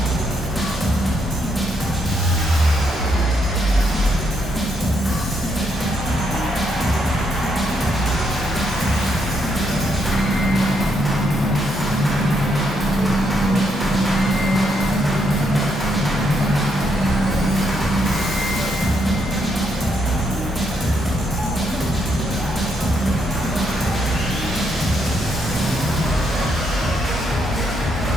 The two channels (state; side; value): normal; both; correlation 0.77